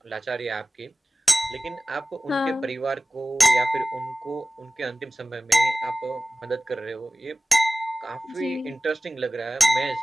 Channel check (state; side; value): normal; both; correlation 0.98